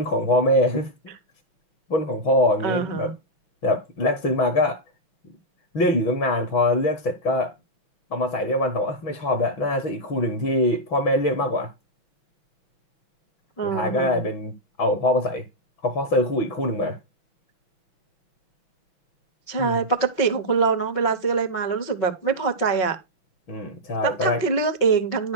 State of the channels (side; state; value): right; late; 6.0 ms